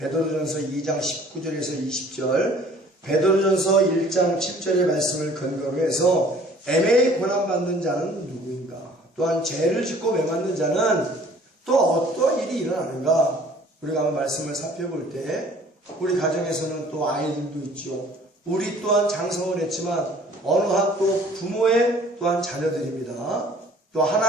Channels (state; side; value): normal; both; correlation 0.53